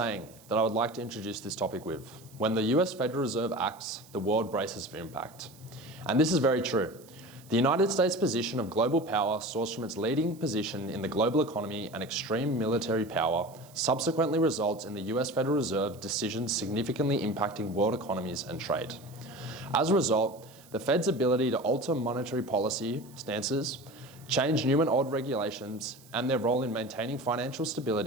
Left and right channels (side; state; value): right; noise; hiss, 24 dB below the sound